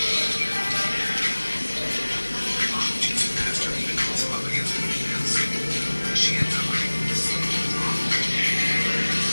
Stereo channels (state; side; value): inverted; both; correlation -1.00